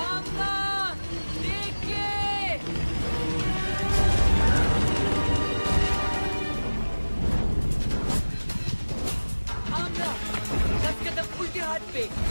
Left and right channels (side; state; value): both; inverted; correlation -1.00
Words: उल्टे हाथ पे,